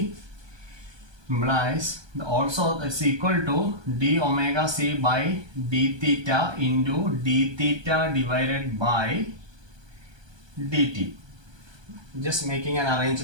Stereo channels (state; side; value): late; left; 1.2 ms